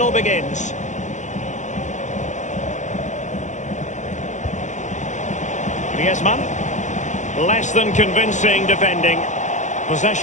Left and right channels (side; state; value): right; late; 0.35 ms